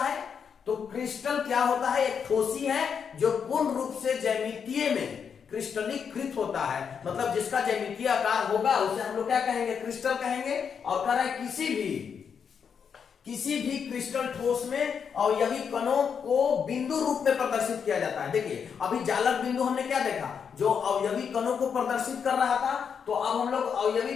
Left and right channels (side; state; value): right; quieter; 6.9 dB